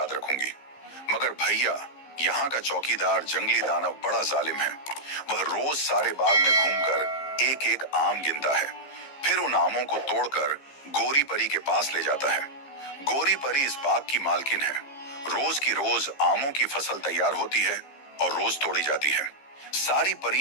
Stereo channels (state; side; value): late; right; 15 ms